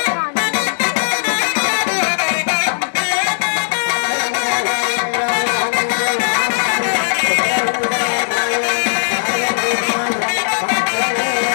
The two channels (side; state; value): right; silent; 68 dB below the other